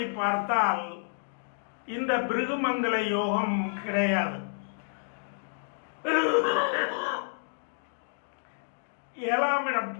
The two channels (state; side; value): silent; right; digital silence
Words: பார்த்தால் இந்த பிருகுமங்கல யோகம் கிடையாது. 7ஆம் இடம்,